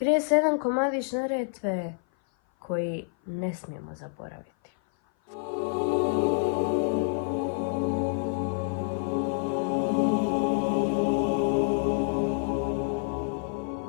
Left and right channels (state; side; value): silent; right; 56 dB below the other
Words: se jedan komadić Neretve koji ne smijemo zaboraviti.